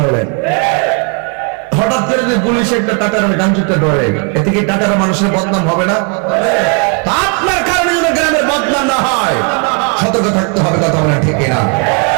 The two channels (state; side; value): quieter; left; 33.7 dB